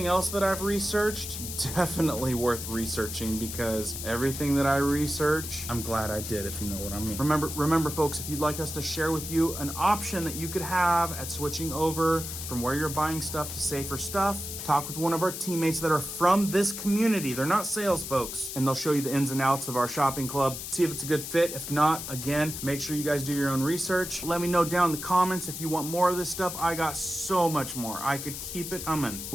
else that I've researched, definitely worth researching, because everything that I research, I'm glad I did, if you know what I mean. Remember folks, if you'd like us to share with you an option that you could have at switching over from where you're buying stuff to safer stuff, talk with one of our teammates that are from this community. They're not sales folks, and they'll show you the ins and outs of our shopping club. See if it's a good fit. If not, again, make sure you guys do your own research. Let me know down in the comments if you want more of this stuff. I got so much more. I could keep it coming.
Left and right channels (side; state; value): left; noise; hiss, 7 dB below the sound